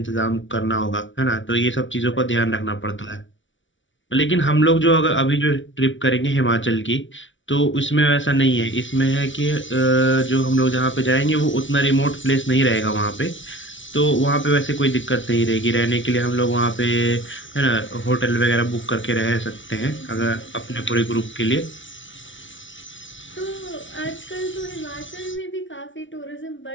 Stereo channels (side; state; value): right; late; 0.56 ms